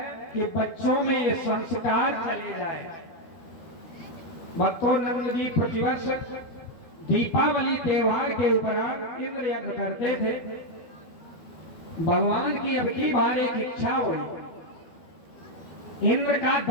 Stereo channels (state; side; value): late; right; 12 ms